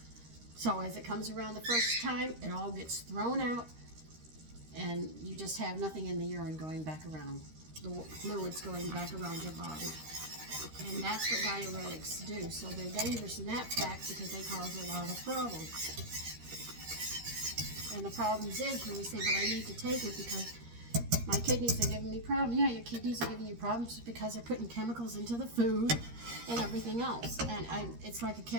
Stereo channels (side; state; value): left; late; 13 ms